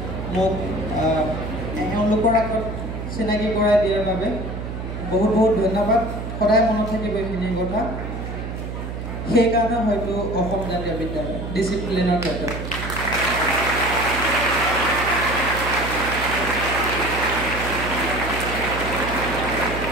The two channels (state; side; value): noise; right; hum, 6 dB below the sound